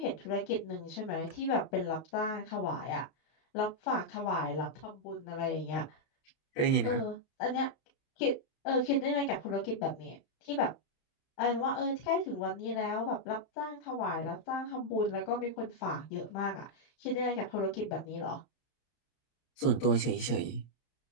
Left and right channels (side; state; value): right; late; 31 ms